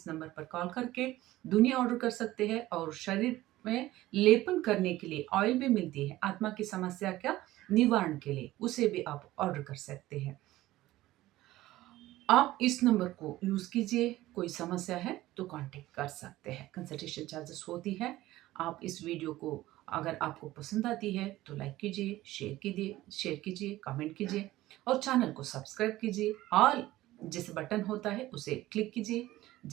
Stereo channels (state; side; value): quieter; left; 16.4 dB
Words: नंबर पर कॉल करके दुनी ऑर्डर कर सकते हैं। और शरीर में लेपन करने के लिए ऑयल भी मिलती है आत्मा की समस्या का निवारण के लिए, उसे भी आप ऑर्डर कर सकते हैं। आप इस नंबर को यूज कीजिए, कोई समस्या है तो कांटेक्ट कर सकते हैं। कंसल्टेशन चार्जेस होती है। आप इस वीडियो को अगर आपको पसंद आती है तो लाइक कीजिए, शेयर कीजिए, कमेंट कीजिए और चैनल को सब्सक्राइब कीजिए। ऑल जिस बटन होता है उसे क्लिक कीजिए।